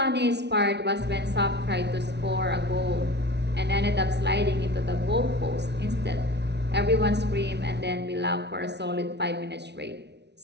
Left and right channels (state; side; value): late; left; 0.50 ms